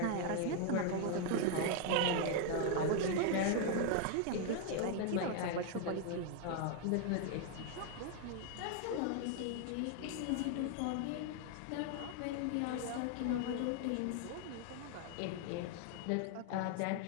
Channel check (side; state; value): both; different; correlation 0.00